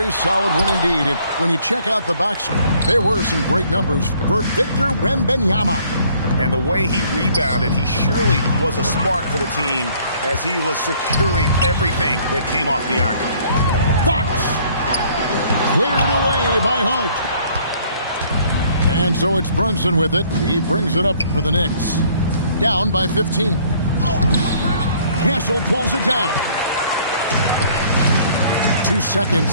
solid win indeed. And when you check out the box score, there were some great numbers for Victor Wembanyama. And the way he rebounded, he surely was a spark for the team as he was securing everything that came off the iron. Fox cleared away by Hart. And so it's Brunson with it. He brings it up for the Knicks. Down by 15. Castle pulls it down. 2 seconds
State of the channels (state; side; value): inverted; both; correlation -0.60